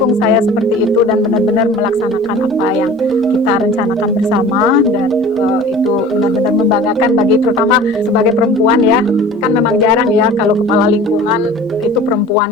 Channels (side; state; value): both; normal; correlation 0.42